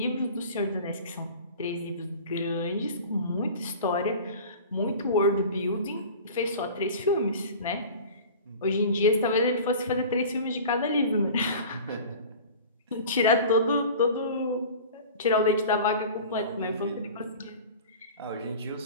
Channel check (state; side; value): inverted; both; correlation -0.39